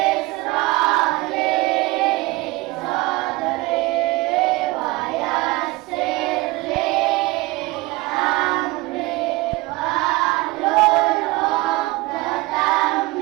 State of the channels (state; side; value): quieter; left; 22.2 dB